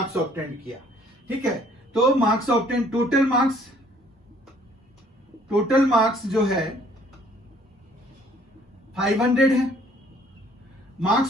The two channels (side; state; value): both; normal; correlation 0.60